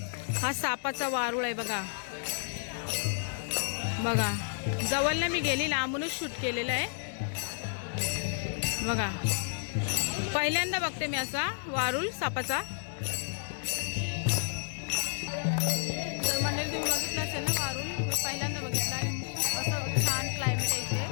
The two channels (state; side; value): silent; right; digital silence